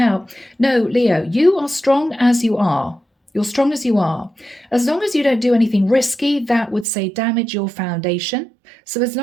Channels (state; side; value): drops out; left; at 6.9 s